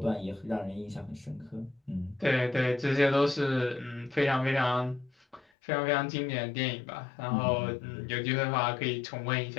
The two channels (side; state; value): right; drops out; at 5.4 s